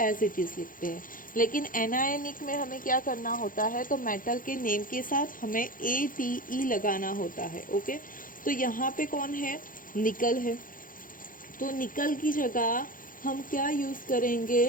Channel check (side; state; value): right; late; 0.40 ms